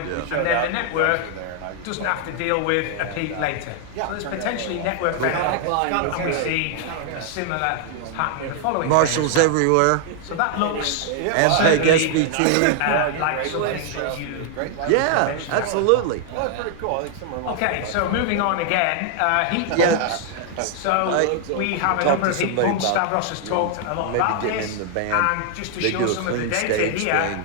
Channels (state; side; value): different; both; correlation 0.00